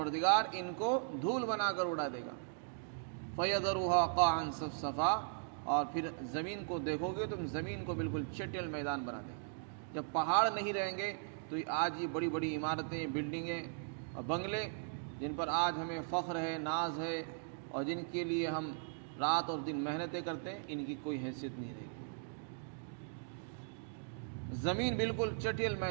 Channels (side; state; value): left; silent; digital silence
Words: ان کو دھول بنا کر اڑا دے گا. فَيَذَرُهَا قَاعًا صَفْصَفًا، اور پھر زمین کو دیکھو گے تم، زمین کو بالکل چٹیل میدان بنا دے گا. جب پہاڑ نہیں رہیں گے تو آج یہ بڑی بڑی عمارتیں، بلڈنگیں اور بنگلے جن پر آج ہمیں فخر ہے، ناز ہے، اور جن کے لیے ہم رات اور دن محنتیں کرتے ہیں، ان کی کوئی حیثیت نہیں رہے گی. زمین بالکل چٹیل